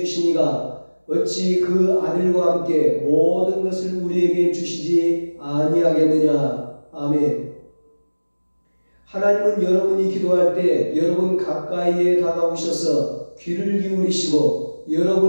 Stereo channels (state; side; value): inverted; both; correlation -1.00